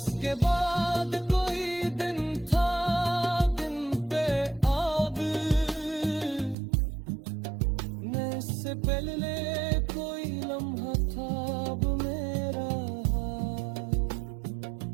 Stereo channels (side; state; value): left; drops out; at 6.6 s